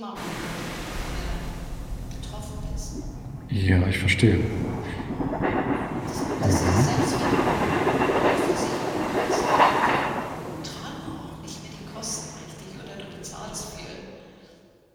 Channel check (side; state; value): both; identical; correlation 1.00